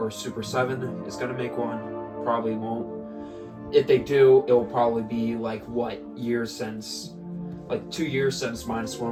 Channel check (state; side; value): identical; both; correlation 1.00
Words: Super 7 is going to make one. Probably won't. If they do, it will probably be like what years since, like 2 years since